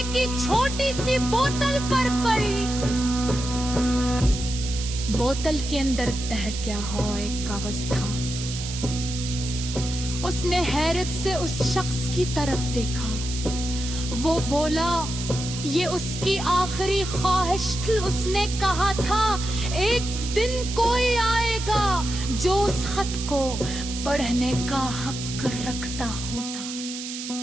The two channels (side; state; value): right; noise; hiss, 8 dB below the sound